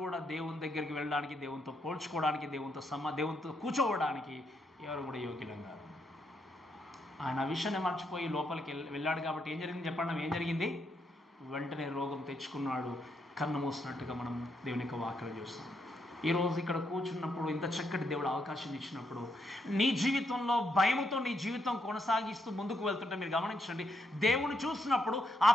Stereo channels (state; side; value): normal; both; correlation 0.78